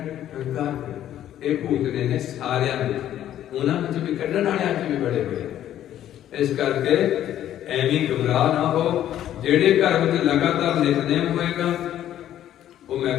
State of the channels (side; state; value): right; quieter; 11.7 dB